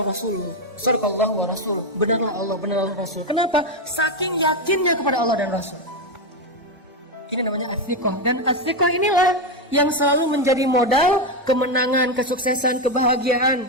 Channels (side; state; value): both; normal; correlation 0.08